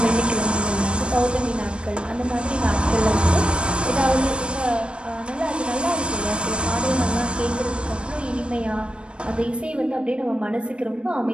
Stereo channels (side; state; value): left; late; 0.057 ms